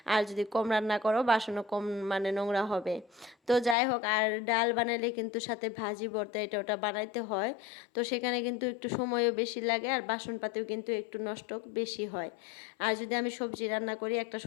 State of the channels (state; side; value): drops out; right; at 3.8 s